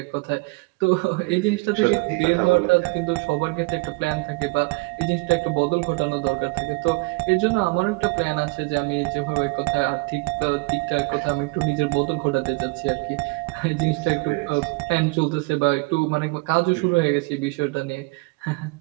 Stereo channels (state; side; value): quieter; left; 26.9 dB